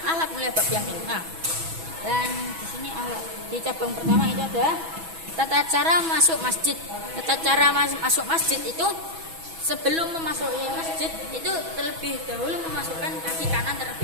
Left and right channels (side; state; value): left; late; 6.1 ms